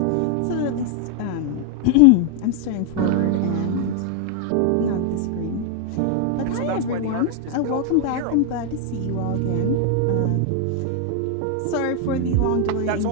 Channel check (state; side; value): different; both; correlation 0.00